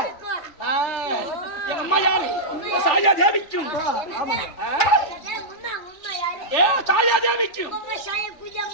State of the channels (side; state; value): right; late; 3.4 ms